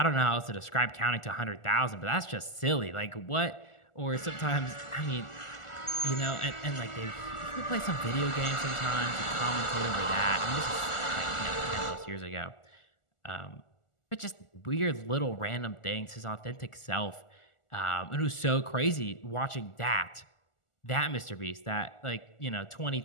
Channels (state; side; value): late; right; 1.4 ms